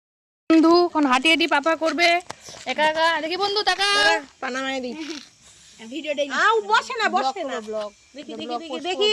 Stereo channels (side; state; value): both; identical; correlation 1.00